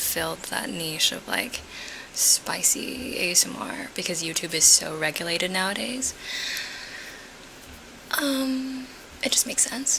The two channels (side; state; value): both; identical; correlation 1.00